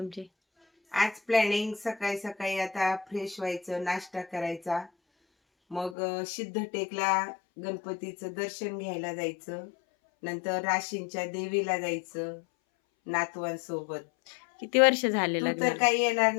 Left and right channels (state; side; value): drops out; right; at 6.0 s